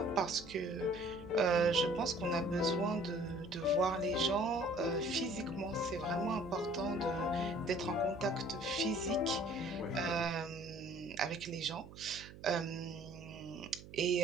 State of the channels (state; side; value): noise; right; hum, 16 dB below the sound